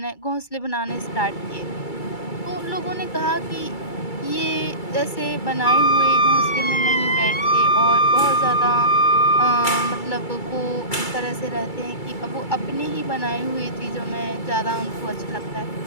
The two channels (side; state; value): right; late; 2.3 ms